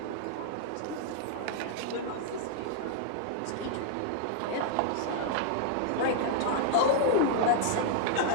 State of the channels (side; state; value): both; different; correlation 0.00